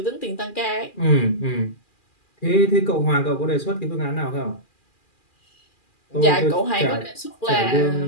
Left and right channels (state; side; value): late; right; 2.4 ms